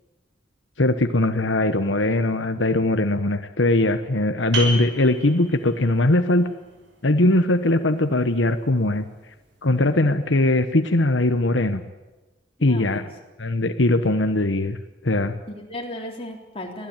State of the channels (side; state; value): both; normal; correlation 0.48